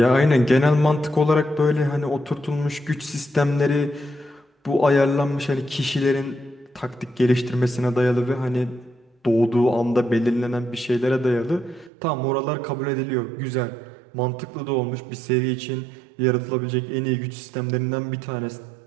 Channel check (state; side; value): drops out; left; at 11.9 s